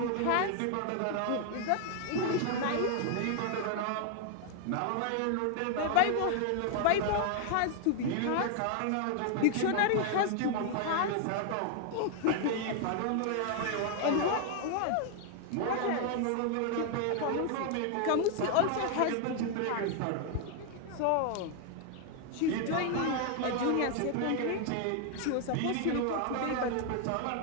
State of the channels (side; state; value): both; different; correlation 0.00